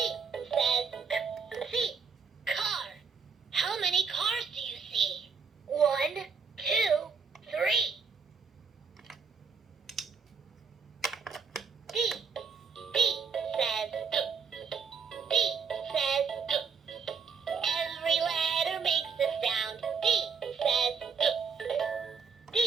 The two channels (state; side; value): quieter; left; 5.6 dB